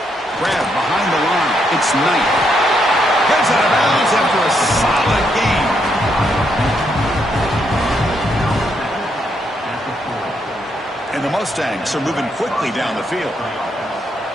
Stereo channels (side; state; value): both; normal; correlation 0.77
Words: Grab behind the line. It's Knight. Gets out of bounds after a solid game. And the Mustangs are moving quickly down the field.